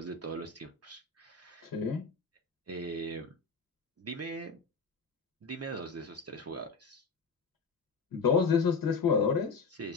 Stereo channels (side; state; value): right; quieter; 4.6 dB